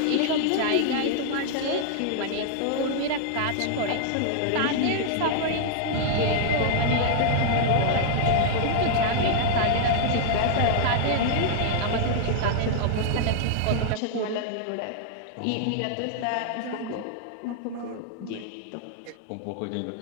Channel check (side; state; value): both; different; correlation 0.00